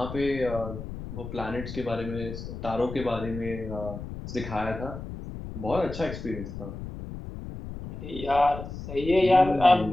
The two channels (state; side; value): noise; left; rumble, 9 dB below the sound